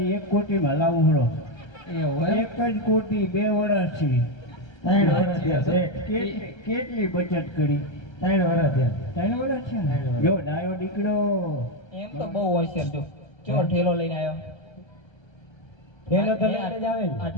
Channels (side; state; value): right; late; 1.3 ms